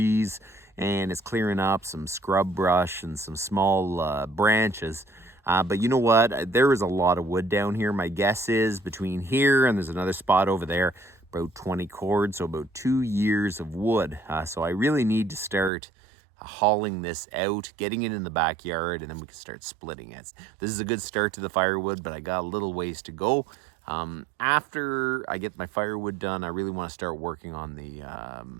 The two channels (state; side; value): drops out; left; at 15.7 s